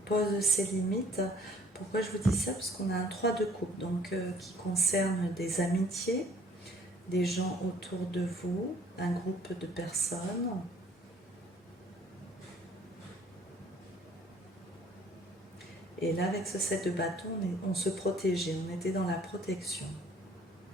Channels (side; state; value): both; normal; correlation 0.57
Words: pose ses limites. Pourquoi je vous dis ça? Parce qu'on a un 3 de coupe, donc qui concerne des amitiés, des gens autour de vous, un groupe de personnes. Et là, avec ce 7 de bâton, on se protégeait, on était dans la protection.